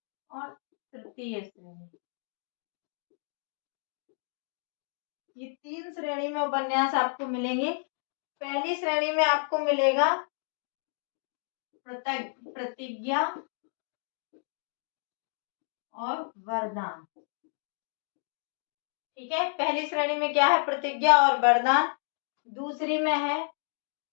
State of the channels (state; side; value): silent; right; 57 dB below the other